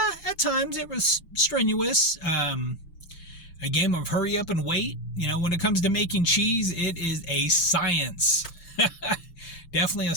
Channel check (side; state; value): right; late; 6.6 ms